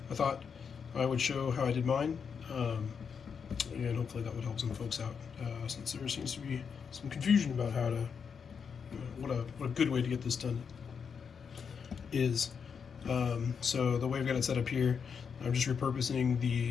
I thought I would show how I did mine, and hopefully that would help some folks out, since there seems to be some confusion about how to, what a good way to get this done is. So the way I've got it set up here, I'm just repurposing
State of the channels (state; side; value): quieter; right; 6.4 dB